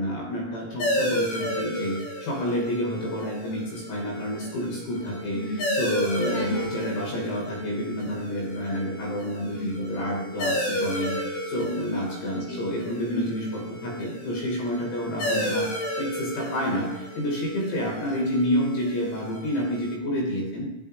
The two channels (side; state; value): right; late; 17 ms